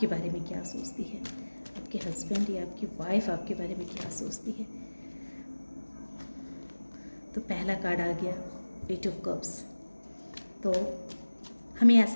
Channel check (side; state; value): both; inverted; correlation -1.00